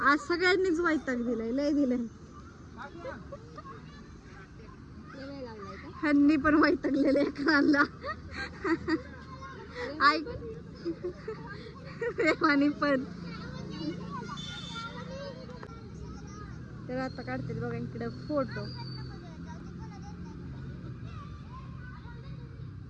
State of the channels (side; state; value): both; identical; correlation 1.00